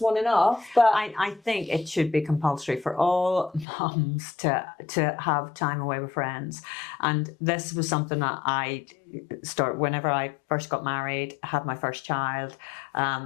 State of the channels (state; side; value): drops out; right; at 3.7 s